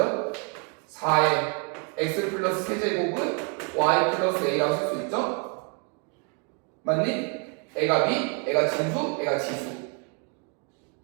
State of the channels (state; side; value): quieter; left; 37.6 dB